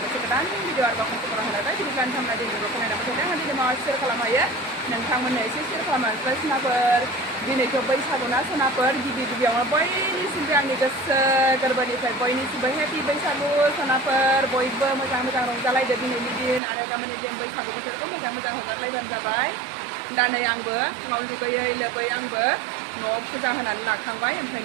bersih kedan. Video arba kong tu orang ada, jadi kan kami ada di lokal nama kita. Nanti dia mau share kalau maya, nanti kami nak share kalau maya. Listener, di ni kau boy sabuna, listener, di orang boy ni sebenarnya ni jas kerbani saya boy ni sebenarnya happy boy sabu, listener boy macam orang jalai jadi ni din, ada kami ni dia boy sabu kita tu macam orang lain dan jabai. Dan yang mau juga ya lebih yang mau puja hanan nak kangbai, yang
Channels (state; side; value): drops out; left; at 16.6 s